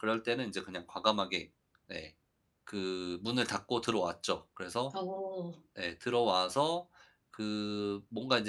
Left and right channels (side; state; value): both; identical; correlation 1.00